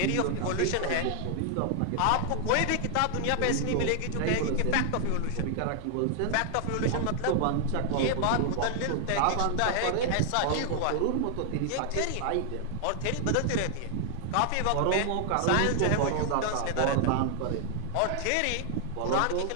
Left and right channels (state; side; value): different; both; correlation 0.00